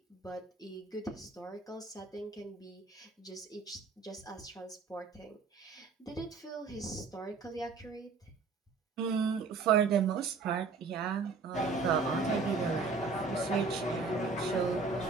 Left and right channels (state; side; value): quieter; left; 4.5 dB